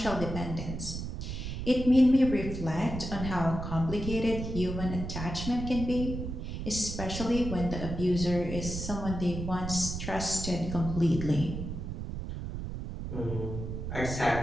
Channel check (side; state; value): right; noise; rumble, 6 dB below the sound